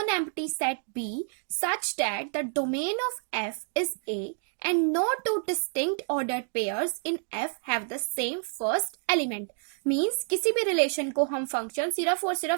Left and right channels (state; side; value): silent; left; 59 dB below the other